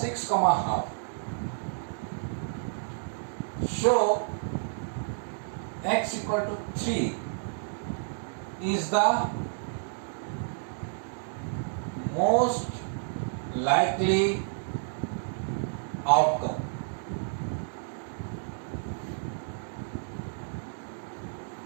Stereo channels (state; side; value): silent; left; digital silence